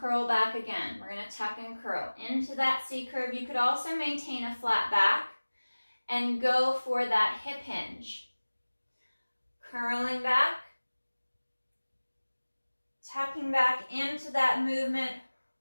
back again. We're going to tuck and curl into that C curve. You could also maintain a flat back and go for that hip hinge. Curling back, tucking back into that movement,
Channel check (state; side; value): inverted; both; correlation -1.00